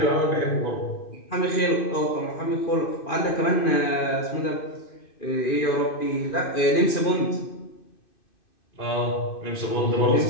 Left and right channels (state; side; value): late; right; 2.6 ms